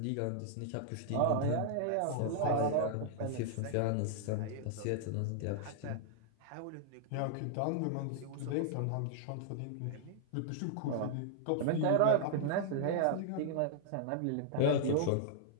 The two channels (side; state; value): both; different; correlation -0.01